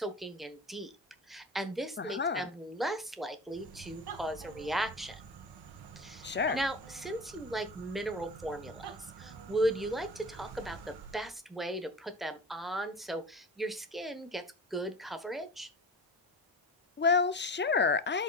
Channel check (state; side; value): normal; both; correlation 0.32